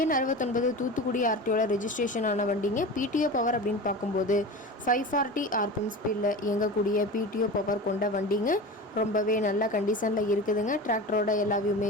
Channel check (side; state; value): both; normal; correlation 0.31